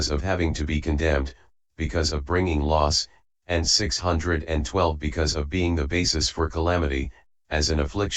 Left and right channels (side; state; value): both; identical; correlation 1.00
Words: of having to be condemned, because of bringing loss, and 612 because of being the basis for calamity, as an